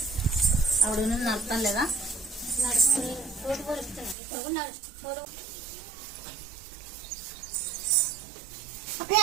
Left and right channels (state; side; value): drops out; left; at 4.2 s